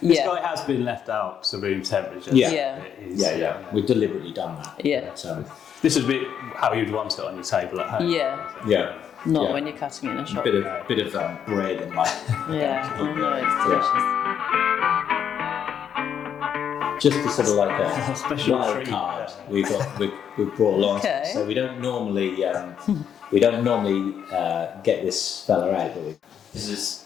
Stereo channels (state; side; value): quieter; right; 8.5 dB